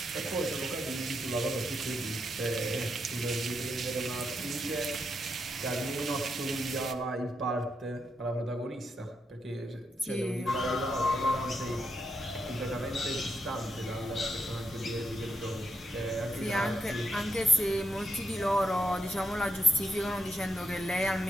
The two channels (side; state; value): both; normal; correlation 0.82